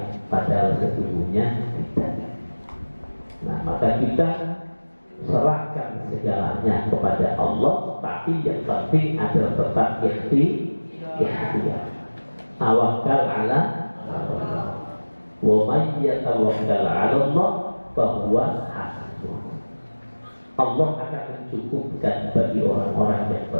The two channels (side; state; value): both; inverted; correlation -1.00